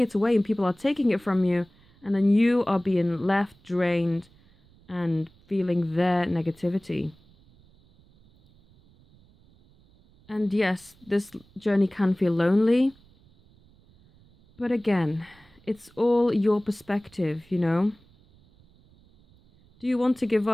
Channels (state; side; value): noise; right; rumble, 29 dB below the sound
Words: away and people are taking it from you. And then you are being left drained and feeling their negativity. And yes, this journey can feel lonely. But again, it's all your perspective, you know? Do you want to give